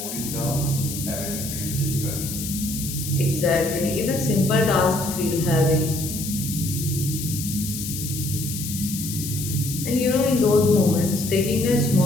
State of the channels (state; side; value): noise; left; hiss, 7 dB below the sound